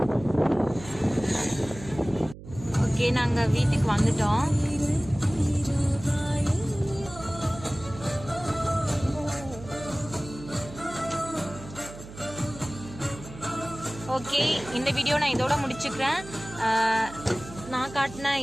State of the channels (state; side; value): noise; right; hum, 15 dB below the sound